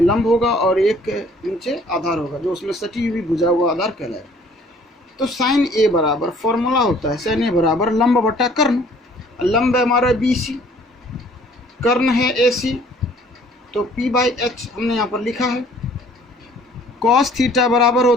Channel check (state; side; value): normal; both; correlation 0.56